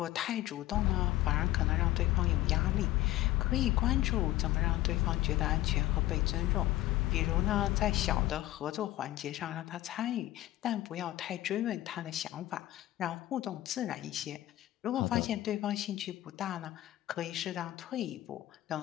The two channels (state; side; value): quieter; right; 15.7 dB